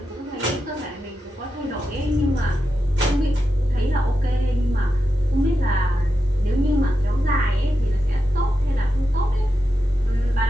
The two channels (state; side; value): normal; both; correlation 0.88